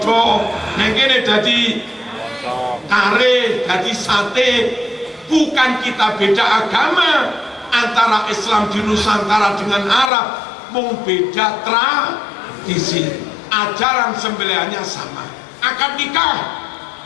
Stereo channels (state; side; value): drops out; right; at 10.1 s